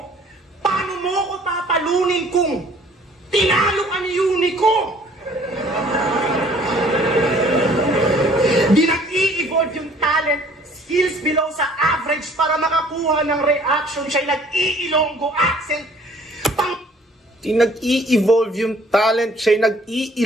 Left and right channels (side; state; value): both; normal; correlation 0.56